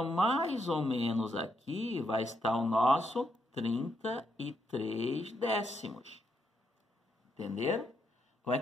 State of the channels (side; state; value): both; normal; correlation 0.79